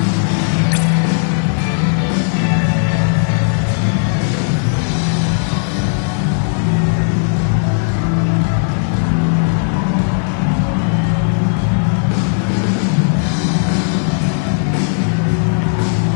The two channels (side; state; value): right; silent; 63 dB below the other